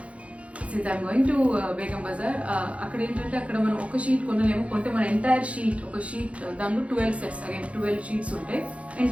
since I'm going to Begum Bazar, అక్కడ ఏంటంటే అక్కడ మనం ఒక షీట్ కొనలేము, కొంటే మన ఎంటైర్ షీట్, ఒక షీట్ దానిలో 12 sets, అగైన్ 12 sheets ఉంటాయి,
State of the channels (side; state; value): left; late; 0.063 ms